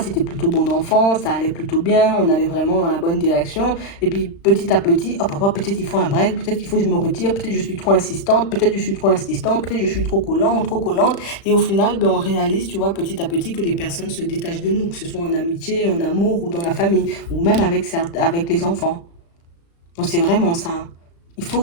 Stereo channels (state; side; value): late; right; 35 ms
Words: plutôt bon enfant, ça allait plutôt bien, on allait vraiment dans la bonne direction. Et puis petit à petit, hop, hop, hop, peut-être il faut un break, peut-être qu'il faut que je me retire, peut-être je suis trop insistante, peut-être je suis trop insistante, peut-être je suis trop collant, trop collante. Et au final, on réalise, tu vois, petit à petit que les personnes se détachent de nous, que ce soit en amitié, en amour ou dans la famille, ou même avec les enfants. Donc c'est vraiment ça. Il faut